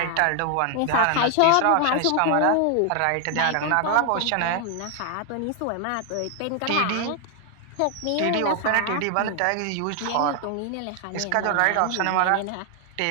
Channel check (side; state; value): both; different; correlation 0.00